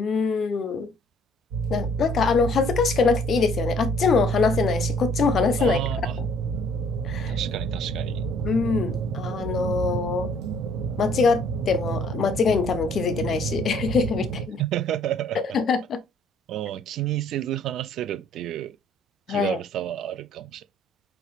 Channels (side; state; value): both; normal; correlation 0.59